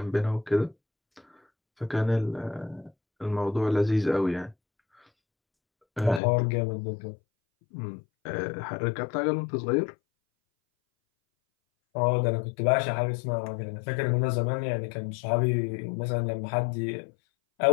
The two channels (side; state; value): right; drops out; at 6.2 s